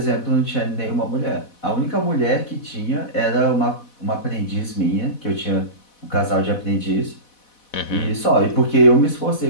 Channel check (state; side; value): late; right; 4.1 ms